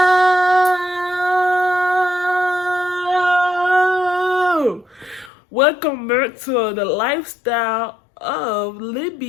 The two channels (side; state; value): right; drops out; at 5.3 s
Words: Welcome back to the lifestyle of